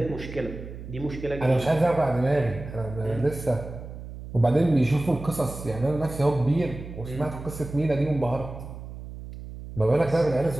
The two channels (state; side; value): noise; right; hum, 12 dB below the sound